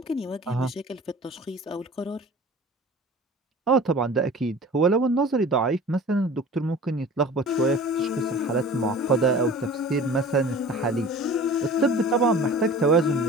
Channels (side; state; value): both; normal; correlation 0.41